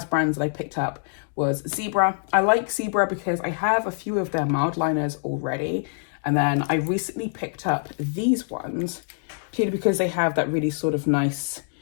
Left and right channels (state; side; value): silent; right; digital silence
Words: brands that I picked up was Zebra. I like Zebra because I have a few of their Mildliners already. And then I recently picked up these ones purely because they have that really sort of nice,